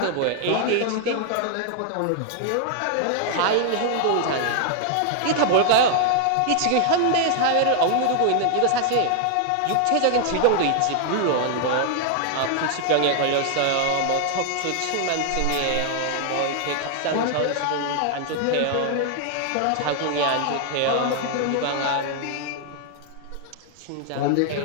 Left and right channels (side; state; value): both; different; correlation 0.00